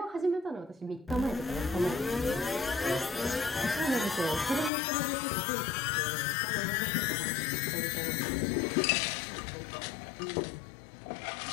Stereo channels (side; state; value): right; drops out; at 4.7 s